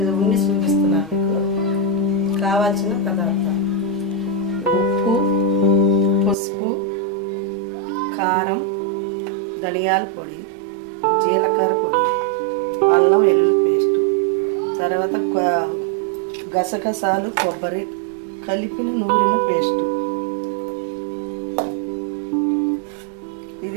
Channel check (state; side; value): drops out; left; at 6.4 s